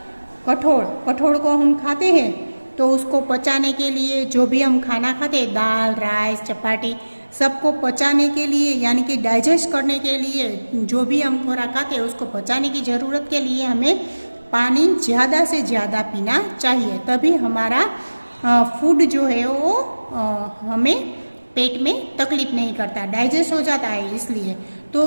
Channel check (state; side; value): inverted; both; correlation -1.00